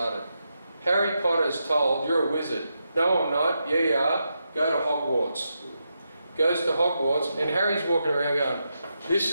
Harry Potter's told, you're a wizard. No, I'm not. Yeah, you are. Go to Hogwarts. Goes to Hogwarts, and Harry's walking around going, this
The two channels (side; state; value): both; inverted; correlation -0.85